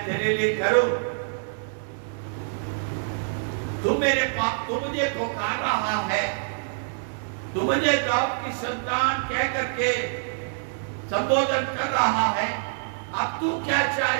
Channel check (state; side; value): silent; left; digital silence